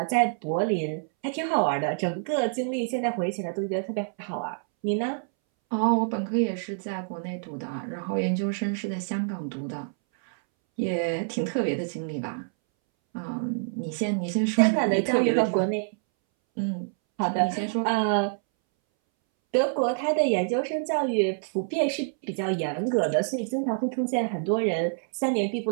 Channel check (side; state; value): left; silent; 60 dB below the other